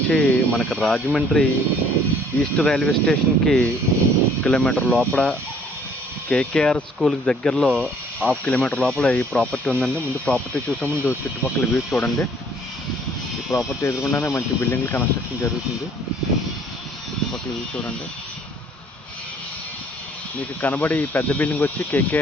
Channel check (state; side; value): normal; both; correlation 0.59